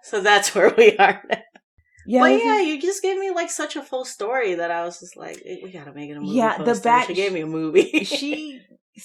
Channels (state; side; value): identical; both; correlation 1.00